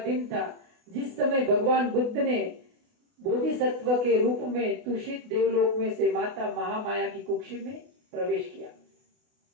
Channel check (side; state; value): left; late; 28 ms